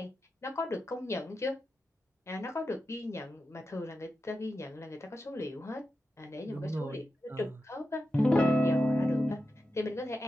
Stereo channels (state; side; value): normal; both; correlation 0.90